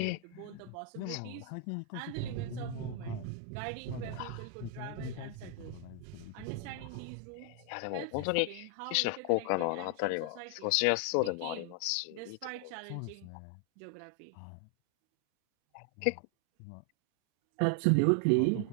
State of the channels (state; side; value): different; both; correlation 0.00